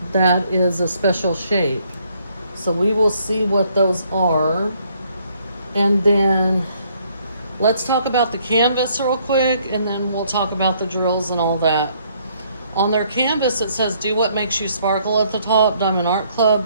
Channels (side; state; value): both; inverted; correlation -0.67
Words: that is a special shape. So we will see what those are. And then let's talk about the canvas real quick, and then we'll talk about the drills and all that. On their canvas, it says, "Do what makes you sparkle" at the top, Diamond Art Club.